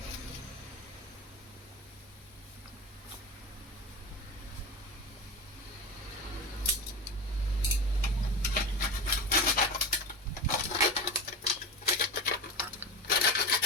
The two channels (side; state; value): both; normal; correlation 0.26